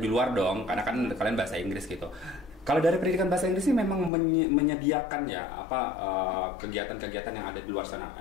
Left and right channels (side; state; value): right; drops out; at 4.1 s